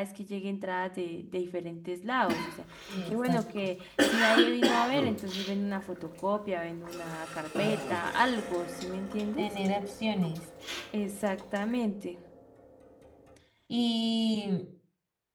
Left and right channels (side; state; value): both; identical; correlation 1.00